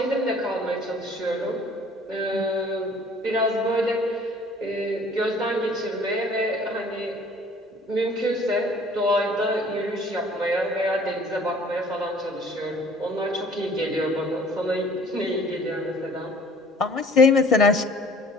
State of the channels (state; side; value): normal; both; correlation 0.52